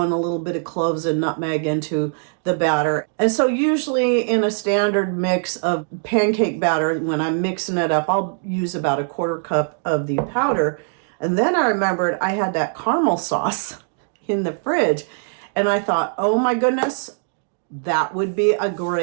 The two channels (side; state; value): left; silent; digital silence